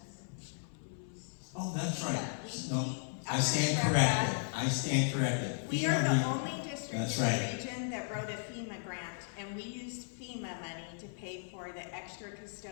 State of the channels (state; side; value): silent; right; 54 dB below the other